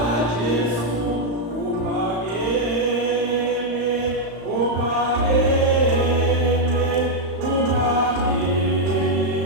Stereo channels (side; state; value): left; late; 35 ms